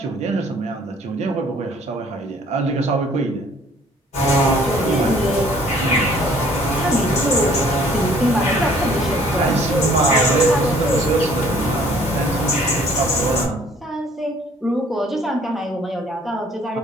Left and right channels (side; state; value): both; normal; correlation 0.57